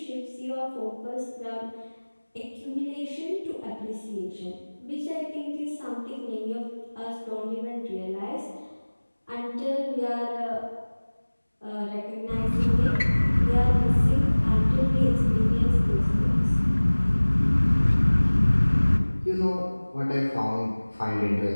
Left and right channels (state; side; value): inverted; both; correlation -1.00